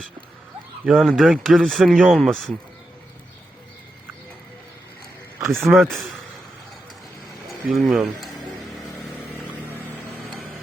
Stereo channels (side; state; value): both; normal; correlation 0.87